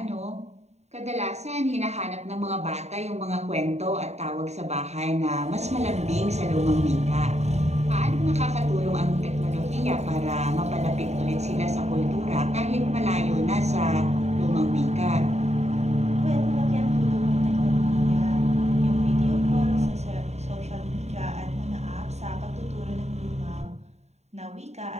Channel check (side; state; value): left; late; 0.32 ms